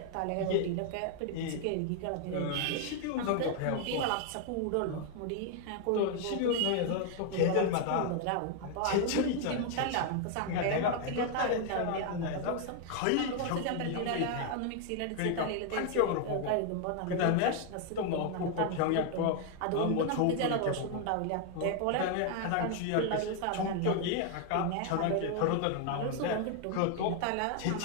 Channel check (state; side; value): different; both; correlation 0.00